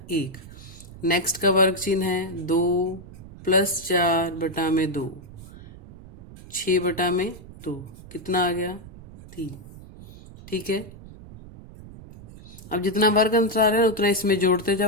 1। नेक्स्ट का वर्ग चिन्ह है 2 प्लस 4 बटा में 2, 6 बटा में 2 कितना आ गया 3। ठीक है, अब जितना वर्ग अंतराल है उतना इसमें जोड़ते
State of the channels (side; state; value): right; noise; rumble, 17 dB below the sound